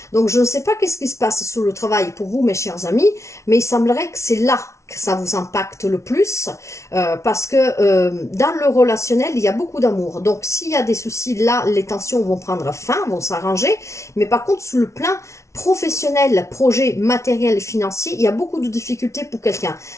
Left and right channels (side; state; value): right; late; 0.14 ms